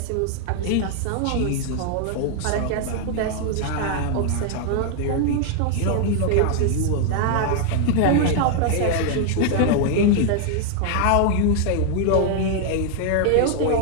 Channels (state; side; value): different; both; correlation 0.00